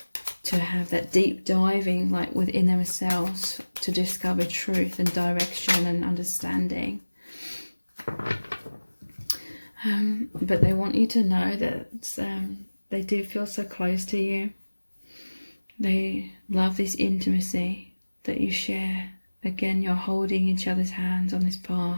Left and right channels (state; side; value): inverted; both; correlation -1.00